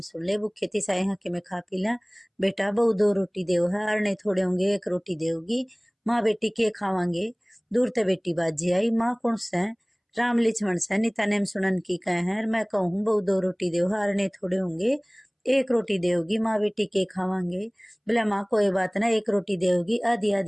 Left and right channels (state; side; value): identical; both; correlation 1.00